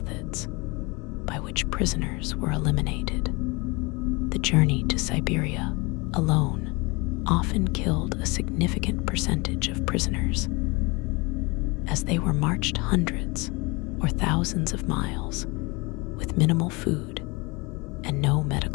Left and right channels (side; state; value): right; quieter; 26.3 dB